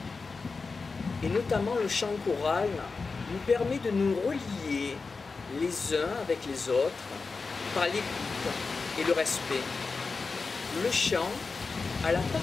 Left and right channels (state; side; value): quieter; right; 4.4 dB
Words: et notamment le chant choral, nous permet de nous relier les uns avec les autres par l'écoute et le respect. Le chant a la